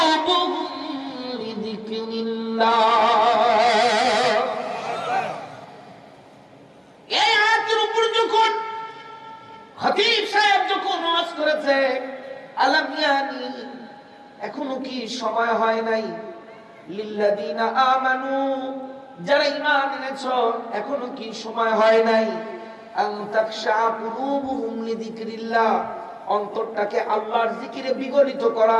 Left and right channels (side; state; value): both; identical; correlation 1.00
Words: লিযিকরিল্লাহ। এই আয়াতের উপর যখন খতিব সাহেব যখন ওয়াজ করেছে, আলাম ইয়ানি, এখনো কি সময় হয় নাই, লিল্লাযীনা আমানু, যারা ঈমান এনেছো, এখনো কি সময় হয় নাই, আন তাখশা কুলুবুহুম লিযিকরিল্লাহ, অন্তরটাকে আল্লাহর জিকিরে বিগলিত